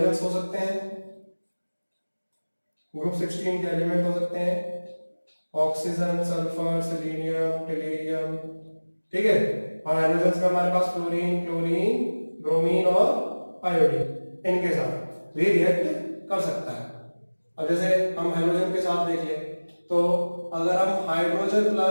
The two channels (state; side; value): inverted; both; correlation -1.00